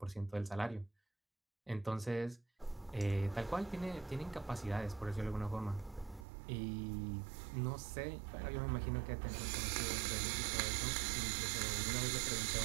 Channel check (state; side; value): drops out; left; at 6.2 s